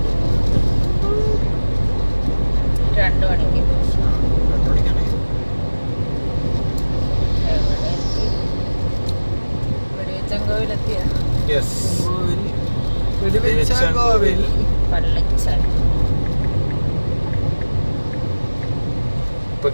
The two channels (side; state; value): both; inverted; correlation -1.00